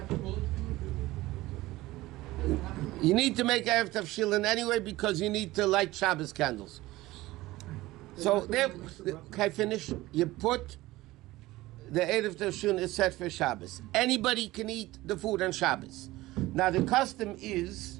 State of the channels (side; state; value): left; quieter; 18.2 dB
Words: You need to make erev tavshilin anyway because you need to light Shabbos candles. So there, can I finish? You put the erev tavshilin is set for Shabbos. Anybody can eat the food on Shabbos. Now the custom